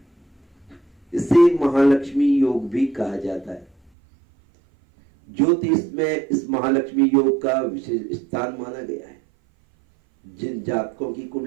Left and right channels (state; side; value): drops out; left; at 3.9 s